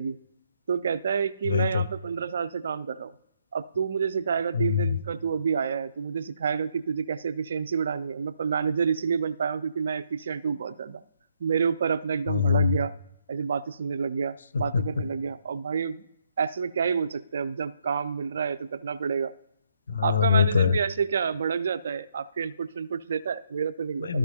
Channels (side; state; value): both; inverted; correlation -0.73